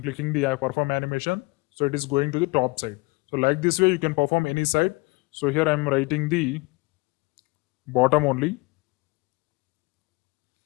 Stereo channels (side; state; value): right; quieter; 25.4 dB